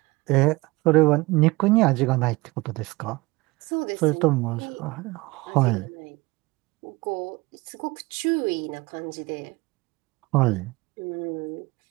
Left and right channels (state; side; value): quieter; left; 22.4 dB